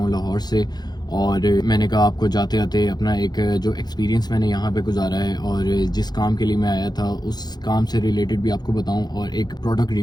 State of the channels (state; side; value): late; right; 0.20 ms